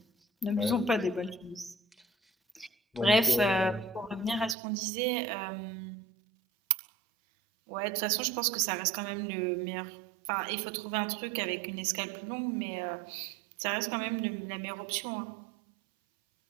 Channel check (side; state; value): left; drops out; at 4.5 s